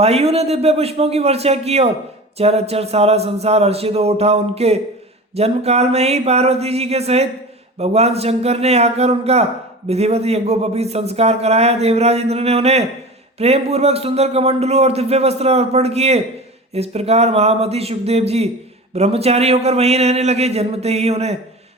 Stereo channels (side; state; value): both; normal; correlation 0.34